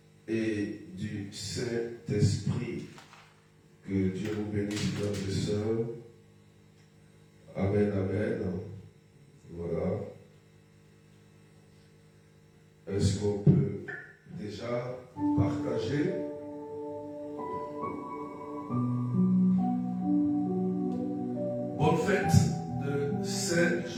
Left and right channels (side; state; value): both; identical; correlation 1.00